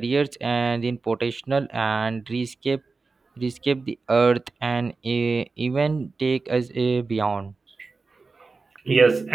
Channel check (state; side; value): quieter; left; 4.1 dB